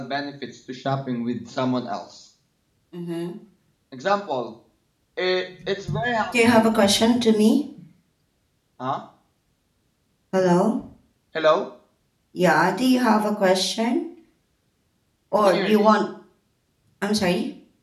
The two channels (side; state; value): both; identical; correlation 1.00